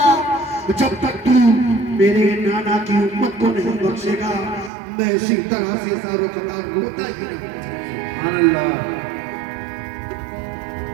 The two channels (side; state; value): left; drops out; at 4.7 s